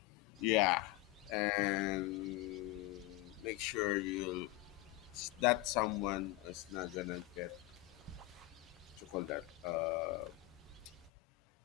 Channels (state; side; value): quieter; right; 18.5 dB